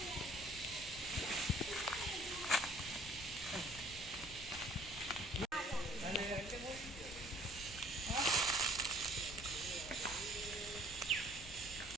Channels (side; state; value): both; normal; correlation 0.56